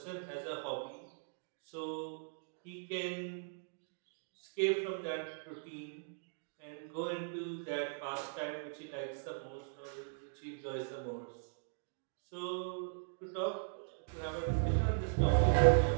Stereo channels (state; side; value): silent; left; digital silence